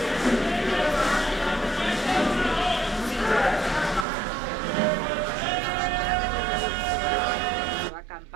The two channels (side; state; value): left; drops out; at 4.0 s